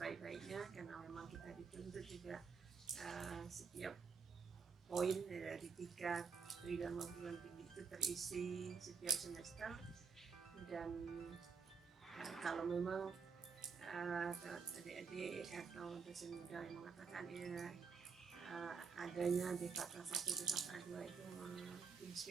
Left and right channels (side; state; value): left; quieter; 5.6 dB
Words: karena memang kita dituntut juga setiap poin dari 3 Tridharma perguruan tinggi itu terisi setiap semester. Dan kalau memang adik-adik atau dosen muda yang mengatakan adanya DKK 1 DKK 2 itu